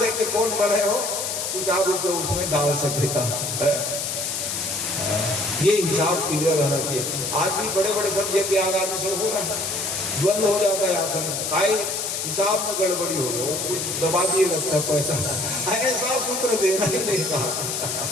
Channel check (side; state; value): left; noise; hiss, 2 dB below the sound